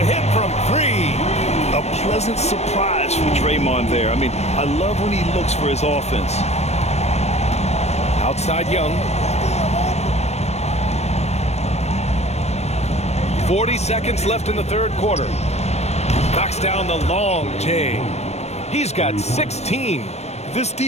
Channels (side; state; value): right; late; 0.31 ms